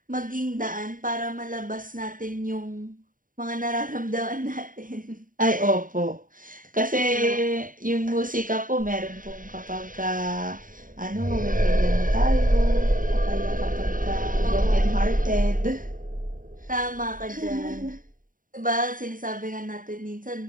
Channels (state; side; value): late; left; 0.39 ms